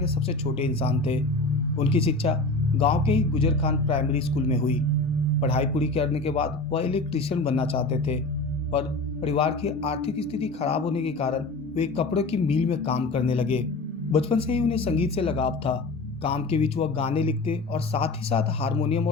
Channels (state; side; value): quieter; right; 3.1 dB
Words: सबसे छोटे इंसान थे। उनकी शिक्षा गांव के ही गुजर खान प्राइमरी स्कूल में हुई। पढ़ाई पूरी करने के बाद वह इलेक्ट्रीशियन बनना चाहते थे, पर परिवार की आर्थिक स्थिति खराब होने के कारण वे कपड़ों की मिल में काम करने लगे। बचपन से ही उन्हें संगीत से लगाव था। काम के बीच वह गाने लिखते और साथ ही साथ हारमोनियम